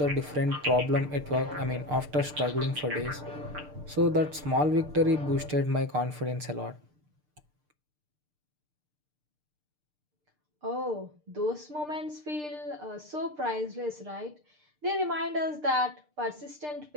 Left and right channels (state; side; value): late; left; 6.7 ms